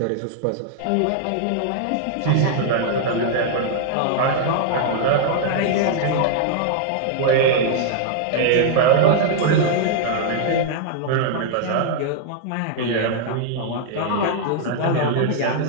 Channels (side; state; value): both; different; correlation -0.01